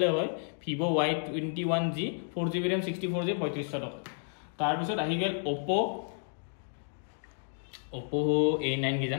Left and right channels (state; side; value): silent; right; digital silence